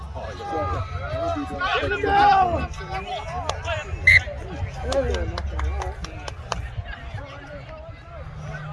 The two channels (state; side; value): identical; both; correlation 1.00